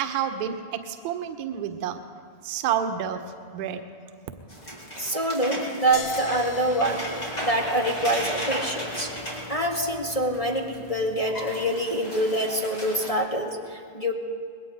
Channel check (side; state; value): right; late; 1.7 ms